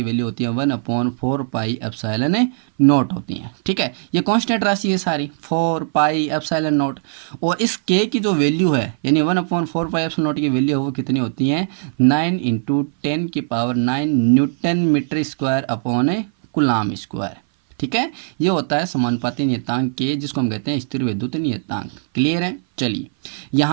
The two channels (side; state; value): left; silent; 59 dB below the other